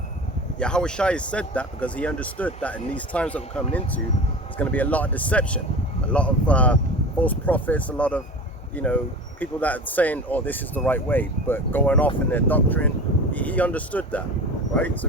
Yahushai said that because he understood that in these times that we're coming into, there's going to be a lot of deception, a lot of false prophets, a lot of, you know, people that are saying, oh, this is the right way, but going off in their doctrine. He understood that, right? So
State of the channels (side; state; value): both; normal; correlation 0.33